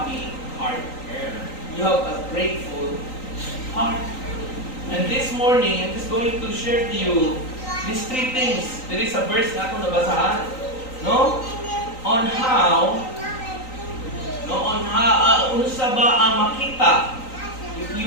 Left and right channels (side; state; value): right; late; 3.9 ms